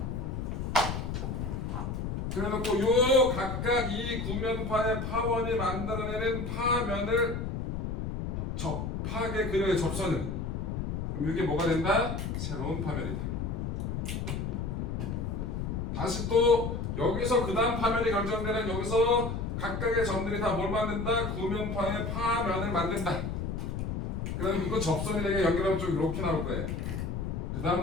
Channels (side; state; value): left; noise; rumble, 3 dB below the sound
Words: 그래놓고 요 각각 이 구면파의 파원이 만들어내는 파면을 접하게 그려요. 접선을. 그럼 이게 뭐가 된다? 새로운 파면이다. 다시 또 여기서 그 다음 파면이 결정되는 여기서 각각의 점들이 다 뭘 만든다? 구면파의 파면을 만든다. 그럼 이거 접선이 되게 연결하면 좀 이렇게 나올 거예요. 그